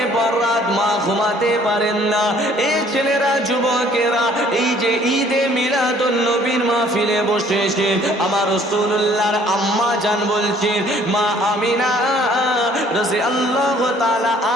পর রাত মা ঘুমাতে পারেন না। এই ছেলেরা, যুবকেরা এই যে ঈদে মিলাদুন নবীর মাহফিলে বসেছে, আমার রাসূলুল্লাহর আম্মা জান বলছেন, মা আমিনা রাদিয়াল্লাহু তাআলা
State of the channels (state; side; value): normal; both; correlation 0.58